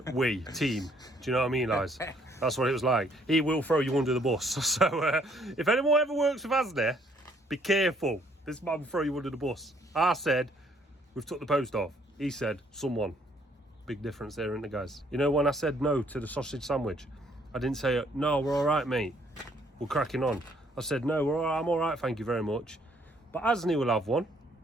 we, team. Do you know what I mean, Liz? That's what it was like. He will throw you under the bus. So if anyone ever works with Asni, be careful. This man will throw you under the bus. I said, we've took the post off. He said, someone. Big difference there, isn't it, guys? You know, when I said no to the sausage sandwich, I didn't say, no, we're all right, mate. We're cracking on. I said, no, we're all right, I'm all right, thank you very much. But Asni will have one.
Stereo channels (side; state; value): both; normal; correlation 0.65